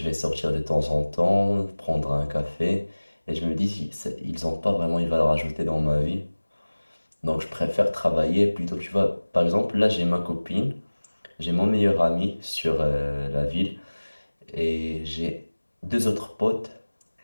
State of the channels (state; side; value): inverted; both; correlation -1.00